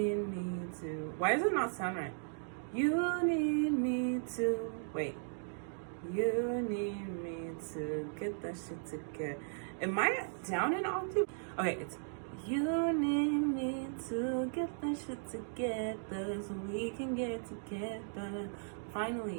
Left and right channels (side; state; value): left; silent; digital silence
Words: me to, why does it not sound right? You need me to, wait. You need me to get that shit together. Am I down an octave? Okay, it's you need me to get that shit together so we can get together.